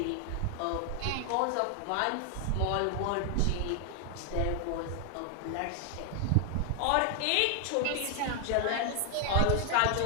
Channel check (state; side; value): different; both; correlation 0.00